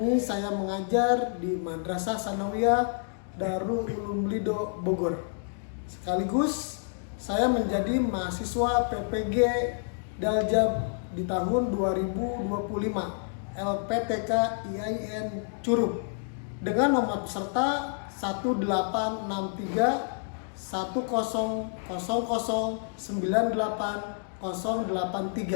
saya mengajar di Madrasah Sanawiyah Darul Ulum Lido Bogor. Sekaligus saya menjadi mahasiswa PPG Daljab di tahun 2025 LPTK IAIN Curup dengan nomor peserta 1863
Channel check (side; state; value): right; silent; digital silence